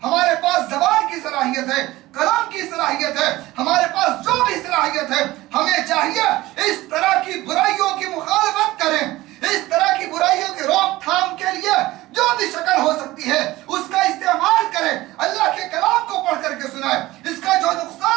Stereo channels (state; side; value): quieter; left; 17.9 dB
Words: ہمارے پاس زبان کی صلاحیت ہے، کلام کی صلاحیت ہے، ہمارے پاس جو بھی صلاحیت ہے، ہمیں چاہیے اس طرح کی برائیوں کی مخالفت کریں، اس طرح کی برائیوں کی روک تھام کے لیے جو بھی شکل ہو سکتی ہے اس کا استعمال کریں، اللہ کے کلام کو پڑھ کر کے سنائیں، اس کا جو